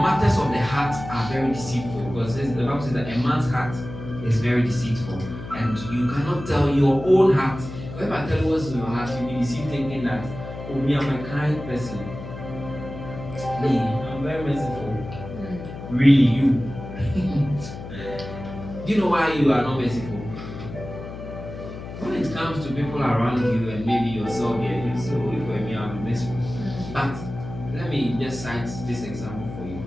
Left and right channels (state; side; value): noise; left; hum, 11 dB below the sound